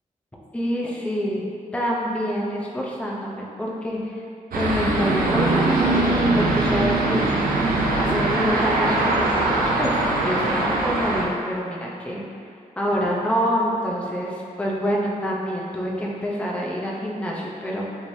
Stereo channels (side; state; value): both; normal; correlation 0.56